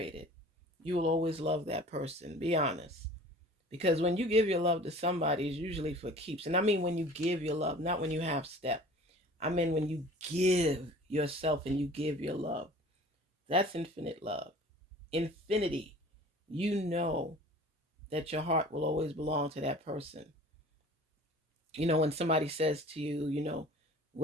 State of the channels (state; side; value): normal; both; correlation 0.45